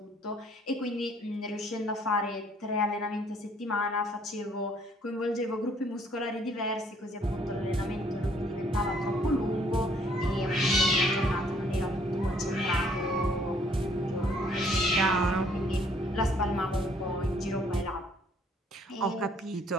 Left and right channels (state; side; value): normal; both; correlation 0.63